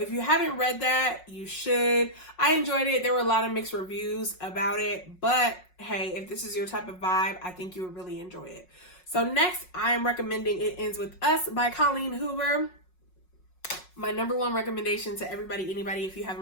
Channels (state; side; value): late; right; 5.5 ms